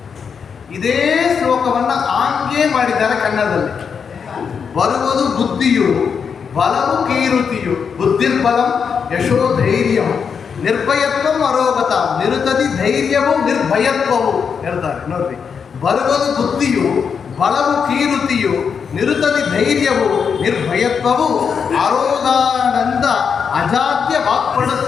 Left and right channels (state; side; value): quieter; right; 6.4 dB